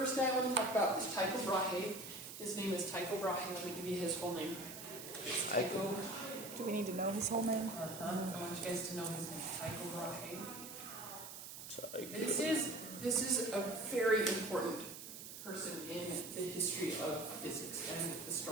guy I want to talk about is Tycho Brahe. His name is Tycho Brahe. Let me give you his whole name. It's Tycho. Do we need to know his whole name? I want you guys to know his name, Tycho Brahe. Tycho. This is a very important person in the history of physics and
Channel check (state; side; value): noise; right; hiss, 11 dB below the sound